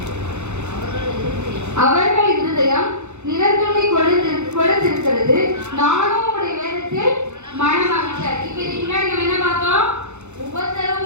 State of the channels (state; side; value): late; left; 0.83 ms